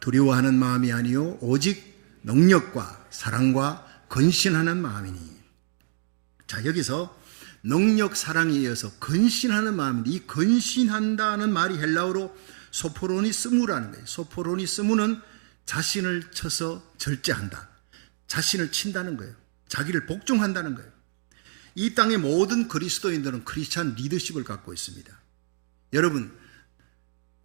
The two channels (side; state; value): left; silent; digital silence